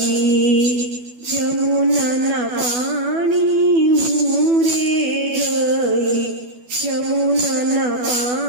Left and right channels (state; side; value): late; left; 12 ms